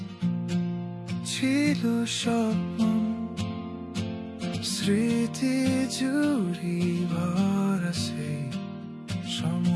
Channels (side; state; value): both; identical; correlation 1.00